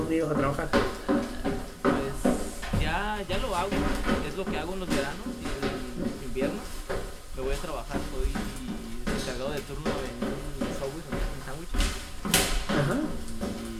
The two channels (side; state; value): both; identical; correlation 1.00